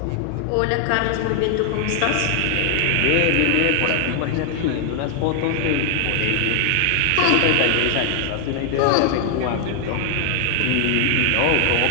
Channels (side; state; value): both; different; correlation 0.00